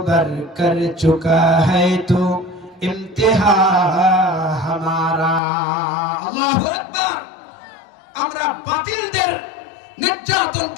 कर चुका है तो इम्तिहा हमारा। আল্লাহু আকবার। আমরা বাতিলদের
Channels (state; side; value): drops out; right; at 5.4 s